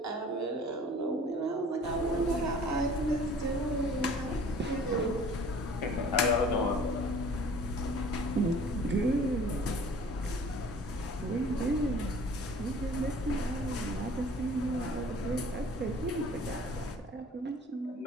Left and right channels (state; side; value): normal; both; correlation 0.49